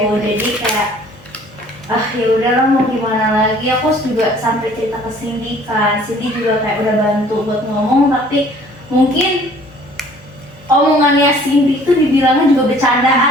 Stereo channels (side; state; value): both; normal; correlation 0.54